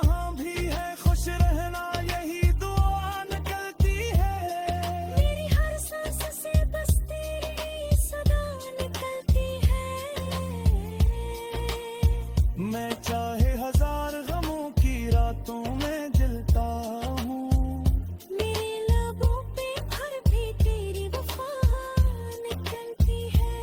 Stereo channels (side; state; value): both; identical; correlation 1.00